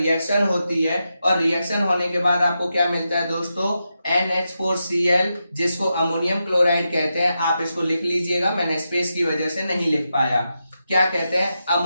होती है। और रिएक्शन होने के बाद आपको क्या मिलता है दोस्तों, NH4Cl, जिसको अमोनियम क्लोराइड कहते हैं। आप इसको लिख लीजिएगा, मैंने स्पेस की वजह से नहीं लिख पाया। क्या कहते हैं,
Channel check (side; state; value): both; inverted; correlation -0.87